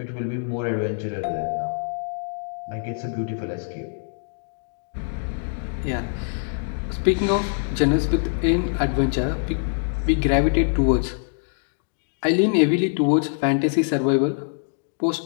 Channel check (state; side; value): silent; right; digital silence